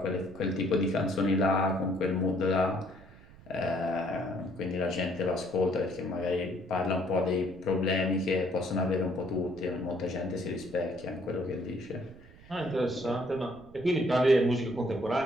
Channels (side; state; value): right; noise; rumble, 22 dB below the sound